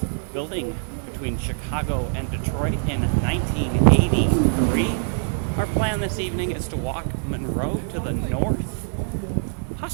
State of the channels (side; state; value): left; silent; 59 dB below the other